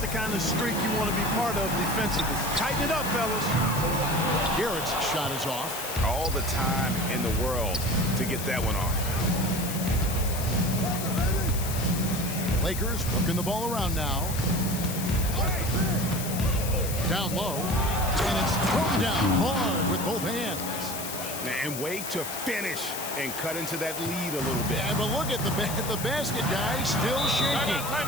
kind of streak you want to be part of defensively. Tighten it up, fellas. Garrett's shot is off. All the time in the world to get that one off. Lakers working the ball around now. Down low. And it's thrown down hard with both hands. And wait to finish and cut into that lead a little bit. Yeah, but look at the basket guy still shaking.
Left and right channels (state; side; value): noise; left; hiss, 7 dB below the sound